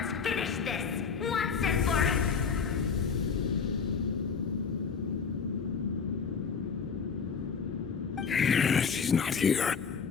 finish this, once and for She's not here.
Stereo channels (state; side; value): quieter; right; 6.0 dB